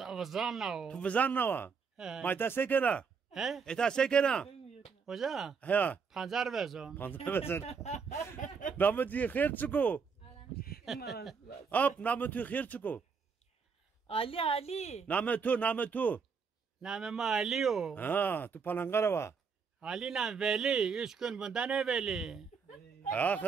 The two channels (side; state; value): left; quieter; 5.7 dB